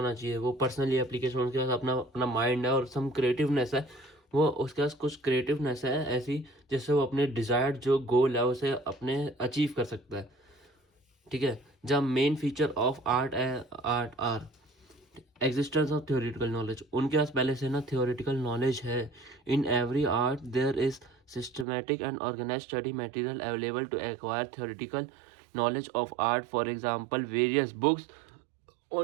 चाहिए, वो पर्सनली एप्लीकेशन, उसके पास अपना अपना माइंड है और सम क्रिएटिवनेस है, वो उसके पास कुछ क्रिएटिवनेस है ऐसी जिससे वो अपने डिजायर्ड जो गोल है उसे अपने अचीव कर सकता है। ठीक है। जब main feature of art are existence of theoretical knowledge, उनके पास पहले से ना थियोरेटिकल नॉलेज है। In every art there is systematic and organize study material available to acquire theoretical knowledge of art. For example various books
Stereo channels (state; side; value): drops out; left; at 21.7 s